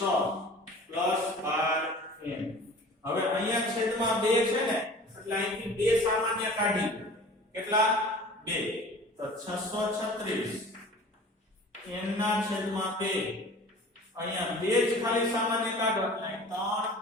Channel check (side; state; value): both; normal; correlation 0.43